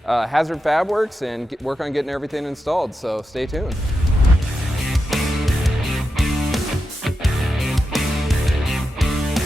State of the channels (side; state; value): both; normal; correlation 0.88